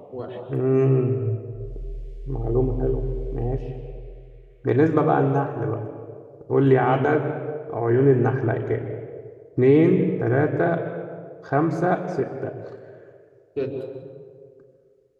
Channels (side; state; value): both; identical; correlation 1.00